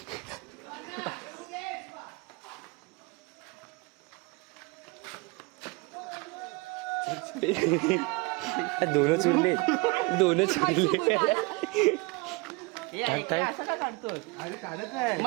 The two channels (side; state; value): left; quieter; 26.9 dB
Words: दोनच उरले. टाक. अरे काढत आहे.